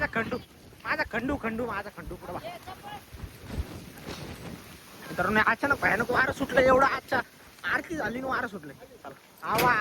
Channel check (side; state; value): both; identical; correlation 1.00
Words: खंडू पुढे बा. तर अचानक भयानक वारं सुटलं. एवढं आजच्या आरती झाली ना वारं सुटलं. चला आवा